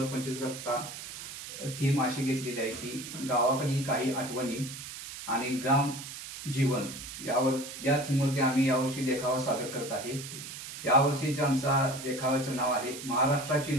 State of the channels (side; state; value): right; noise; hiss, 10 dB below the sound